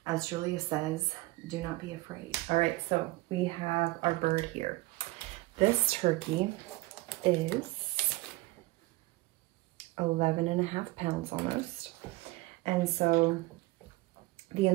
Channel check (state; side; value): quieter; left; 20.7 dB